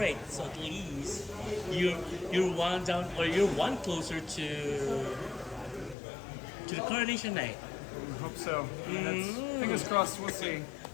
So at least you're one down, or you're one closer to the coronation night. I hope so. That's, fingers crossed. We'll see.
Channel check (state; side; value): drops out; right; at 6.0 s